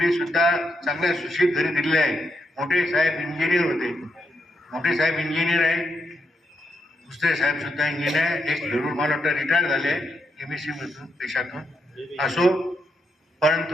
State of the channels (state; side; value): normal; both; correlation 0.81